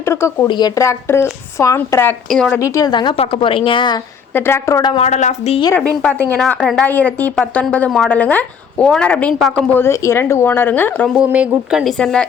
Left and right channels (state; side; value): quieter; right; 6.8 dB